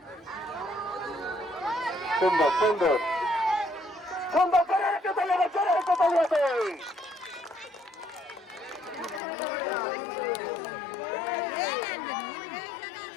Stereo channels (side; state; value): right; drops out; at 9.2 s